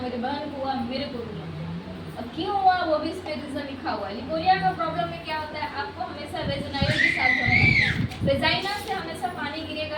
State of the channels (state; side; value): identical; both; correlation 1.00